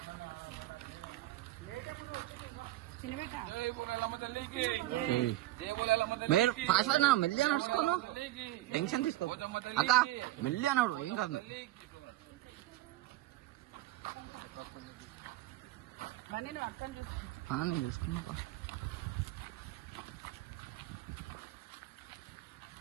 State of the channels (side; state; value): left; quieter; 15.9 dB